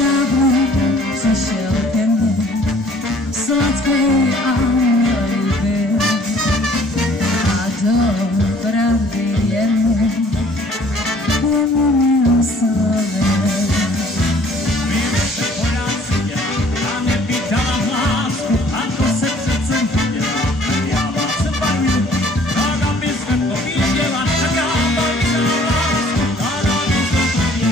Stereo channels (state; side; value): normal; both; correlation 0.56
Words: přišel ke mně sladký a líbý a do pravdy jen umím slovy.